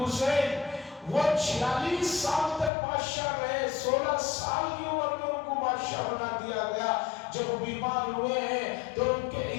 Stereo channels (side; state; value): right; drops out; at 2.7 s